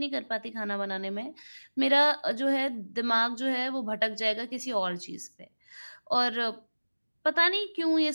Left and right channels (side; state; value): both; inverted; correlation -1.00